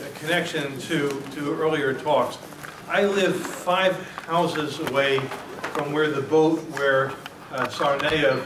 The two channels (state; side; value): identical; both; correlation 1.00